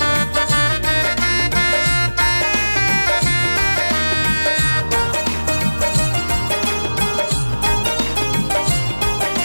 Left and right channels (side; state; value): both; inverted; correlation -1.00